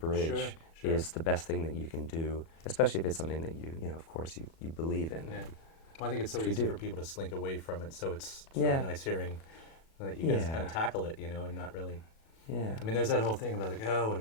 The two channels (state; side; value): late; right; 37 ms